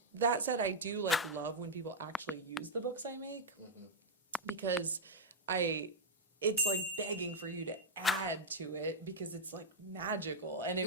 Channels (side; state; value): both; normal; correlation -0.04